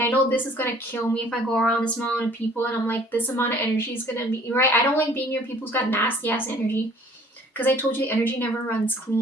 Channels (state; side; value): normal; both; correlation 0.54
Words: I know this is gonna kill me if I go around this amount of people, and I'm like, this amount of energy is gonna be right. I don't like being near people who's got nasty ass energy, because I told you the energy never runs